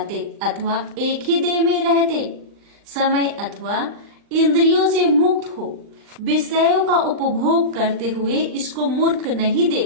अथवा एक ही देह में रहते समय अथवा इंद्रियों से मुक्त हो विषयों का उपभोग करते हुए इसको मूर्ख नहीं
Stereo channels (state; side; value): late; left; 39 ms